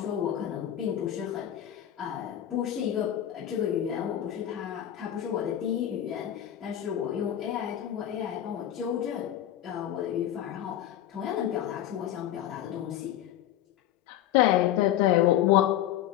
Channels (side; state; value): right; quieter; 11.6 dB